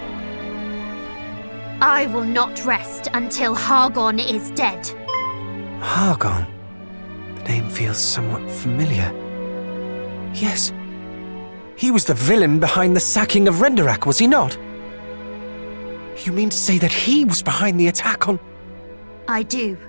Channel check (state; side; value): inverted; both; correlation -1.00